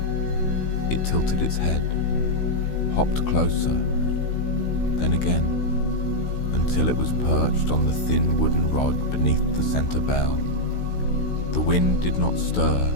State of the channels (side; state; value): right; late; 16 ms